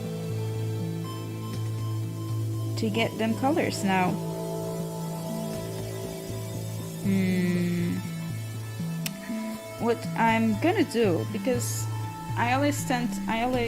to get them colors now. What I'm gonna do, because I always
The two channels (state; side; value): identical; both; correlation 1.00